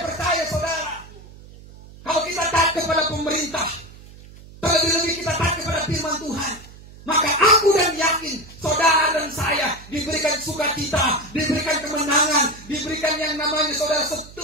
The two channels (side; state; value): right; noise; hum, 19 dB below the sound